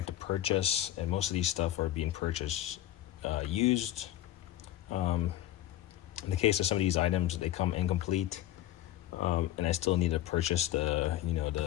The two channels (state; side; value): quieter; right; 13.7 dB